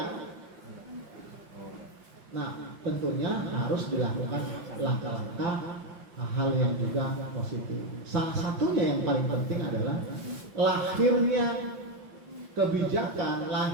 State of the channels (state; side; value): late; left; 5.8 ms